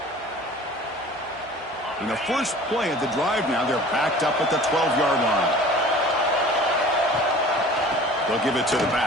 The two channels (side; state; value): both; normal; correlation 0.44